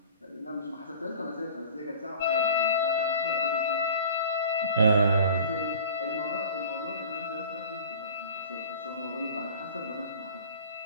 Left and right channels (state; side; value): inverted; both; correlation -0.43